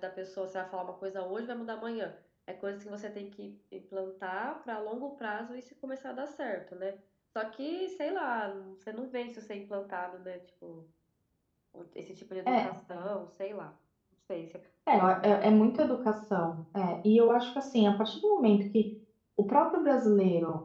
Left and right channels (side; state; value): both; identical; correlation 1.00